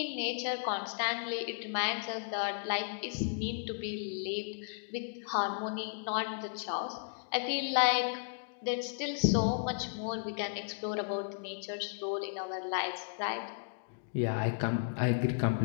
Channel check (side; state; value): right; silent; digital silence